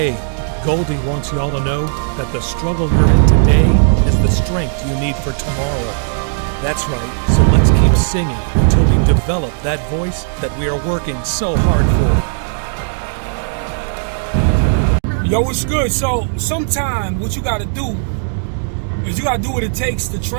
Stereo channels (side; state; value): left; silent; digital silence